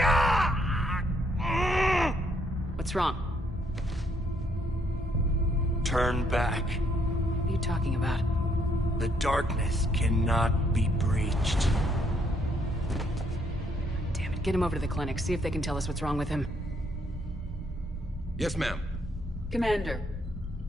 What's wrong? Turn back. What are you talking about? The darkness cannot be breached. Damn it, get him over to the clinic. See if they can tell us what's wrong with him. Yes, ma'am. Commander,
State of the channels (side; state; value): both; normal; correlation 0.70